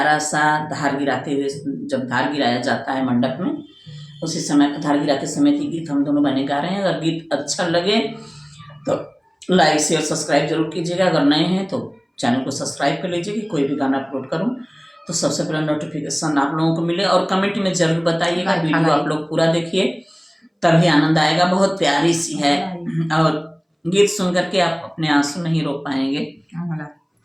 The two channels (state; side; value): identical; both; correlation 1.00